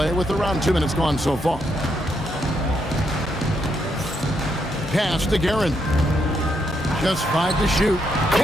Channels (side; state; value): both; normal; correlation 0.78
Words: with around 2 minutes gone so far. Pass to Guerin. Just 5 to shoot.